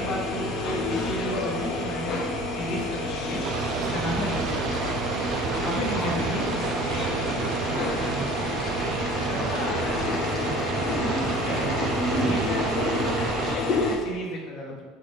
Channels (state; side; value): normal; both; correlation 0.46